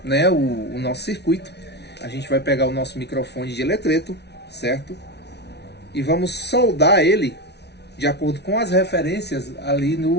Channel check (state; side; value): late; right; 0.49 ms